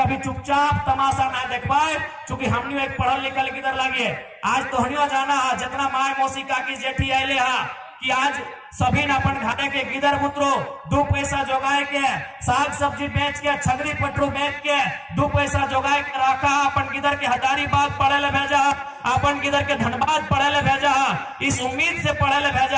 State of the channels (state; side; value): identical; both; correlation 1.00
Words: चुपचाप तमाशा ना देख पाए, क्योंकि हमने एक पढ़ल लिखल किधर लगे। आज तो हनियो जाना है जितना माय मौसी काकी जेठी आये हा कि आज सभी न अपन घाटे के गिदर बुतरो 2 पैसा जोगाए के, साग सब्जी बेच के, छगरी पटरू बेच के 2 पैसा जोगाए के रखा, अपन गिदर के हजारीबाग पढ़े ले भेजा, अपन गिदर के धनबाद पढ़े ले भेजा, इस उम्मीद से पढ़े ले